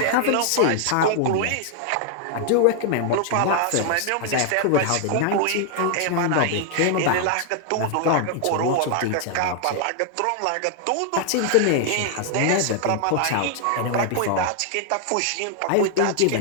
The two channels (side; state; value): both; different; correlation 0.00